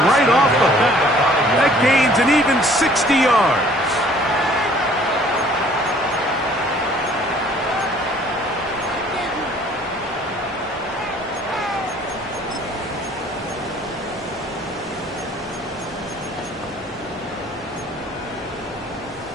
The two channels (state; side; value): normal; both; correlation 0.56